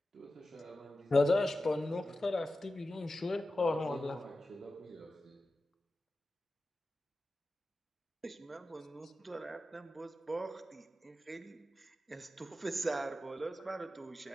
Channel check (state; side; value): normal; both; correlation 0.93